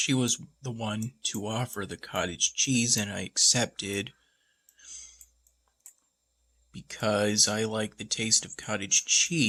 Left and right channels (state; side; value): identical; both; correlation 1.00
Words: was the one to offer the cottage cheese, and I accepted because I like the taste of cottage